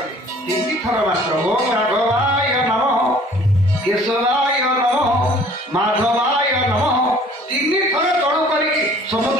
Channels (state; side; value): normal; both; correlation 0.53